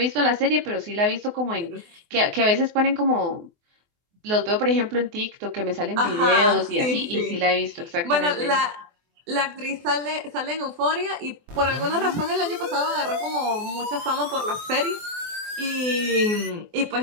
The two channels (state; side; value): late; left; 24 ms